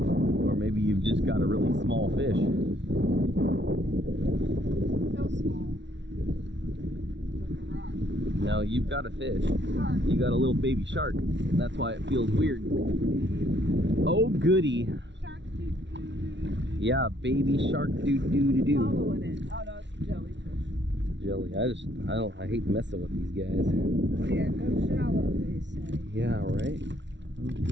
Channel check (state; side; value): late; left; 0.52 ms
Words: Now you've got a fish. You got a little baby shark. That's why it feels weird. Oh goody. Shark. Yeah, baby shark doo. Following it. Oh no, it's jellyfish. Jelly. I hate messing with these guys. Yeah, go shallow, they say. Yeah, right? Oh